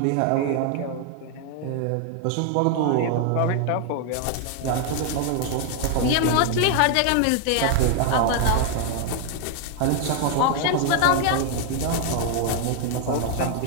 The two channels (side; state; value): both; different; correlation 0.00